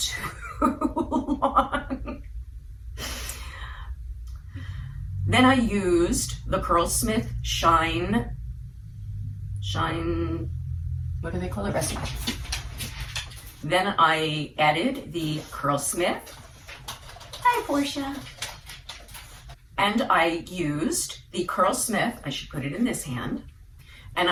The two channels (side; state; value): both; identical; correlation 1.00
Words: long. Then I used the Curlsmith Shine, what do they call it? Recipe. Then I added the Curlsmith. Hi, Portia. And I used the Curlsmith, I should put it in this hand, and